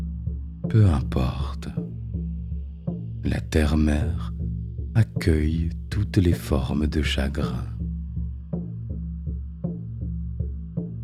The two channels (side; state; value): both; identical; correlation 1.00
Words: Peu importe, la terre-mère accueille toutes les formes de chagrin.